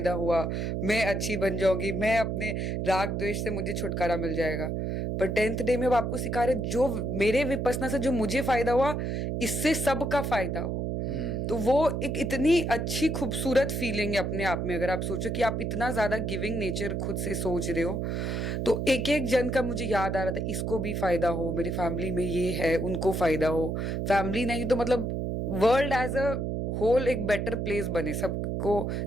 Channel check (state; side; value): noise; right; hum, 1 dB below the sound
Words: हुआ, मैं अच्छी बन जाऊंगी, मैं अपने राग द्वेष से मुझे छुटकारा मिल जाएगा। पर 10th डे में अब आपको सिखा रहे जो मेरे विपसना से जो मुझे फायदा हुआ, इससे सबका फायदा हो। तो वो एक इतनी अच्छी खूबसूरत फीलिंग है अपने आप में। अगर आप सोचो कि आप इतना ज्यादा गिविंग नेचर खुद से सोच रहे हो, तो एक एक जन का मुझे याद आ रहा था, इसको भी फायदा हो, मेरे फैमिली में ये है उनको फायदा हो, फैमिली नहीं तो मतलब वर्ल्ड एज अ होल एक बेटर प्लेस बने सबको